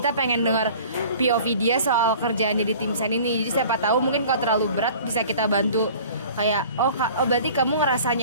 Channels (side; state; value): both; inverted; correlation -0.46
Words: pengen dengar POV dia soal kerjaannya di tim sen ini. Jadi siapa tahu mungkin kalau terlalu berat bisa kita bantu, kayak oh berarti kamu ngerasa